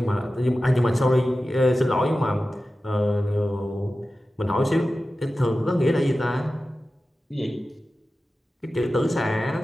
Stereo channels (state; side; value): normal; both; correlation 0.94